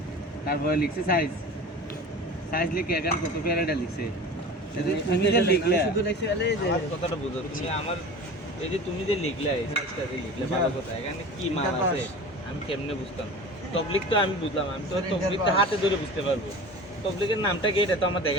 তারপরে লিখছে সাইজ, সাইজ লিখে এখানে কত প্যারাটা লিখছে। তুমি যে লিখলে শুধু লিখছে আলে যে কথাটা বুঝো তুমি আমার, এই যে তুমি যে লিখলে এই সাইজটা যে লিখলে ভালো কথা, এখানে কি মাল আছে আমি কেমনে বুঝতাম? তবলিক তো আমি বুঝলাম, আমি তো তবলিকটা হাতে ধরে বুঝতে পারবো, তবলিকের নামটা কি এটা তো আমার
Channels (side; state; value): both; normal; correlation 0.36